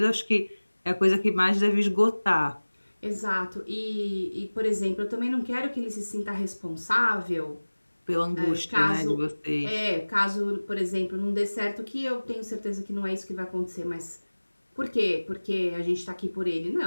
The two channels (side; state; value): both; inverted; correlation -1.00